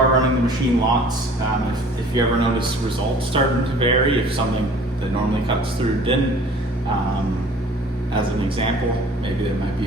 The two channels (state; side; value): normal; both; correlation 0.49